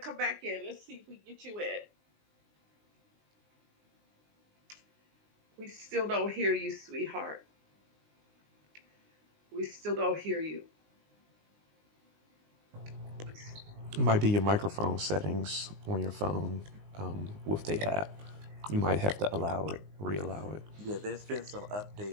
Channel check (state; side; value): late; left; 19 ms